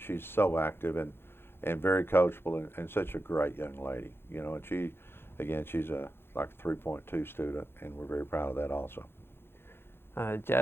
so active and very coachable and such a great young lady. And she's like a 3.2 student, and we're very proud of that also.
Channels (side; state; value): right; late; 0.11 ms